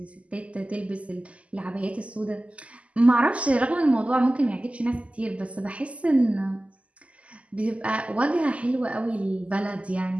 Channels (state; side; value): late; left; 0.063 ms